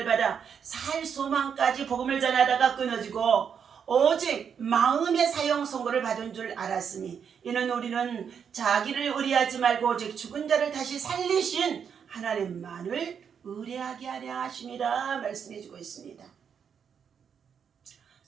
받아 살 소망까지 복음을 전하다가 끊어지고 오직 마음의 사형 선고를 받은 줄 알았으니, 이는 우리는 자기를 의뢰하지 말고 오직 죽은 자를 다시 살리신 하나님만을 의뢰하게 하려 하심이라 말씀해주고 있습니다.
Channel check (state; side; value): quieter; left; 7.3 dB